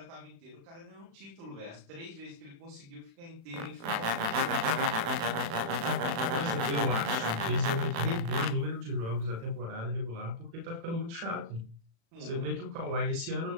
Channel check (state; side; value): late; left; 36 ms